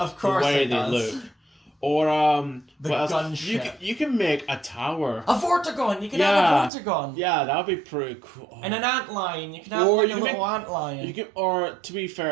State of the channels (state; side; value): drops out; left; at 6.7 s